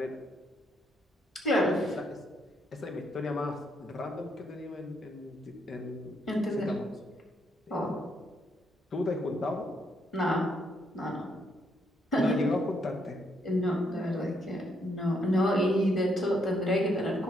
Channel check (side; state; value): both; normal; correlation 0.74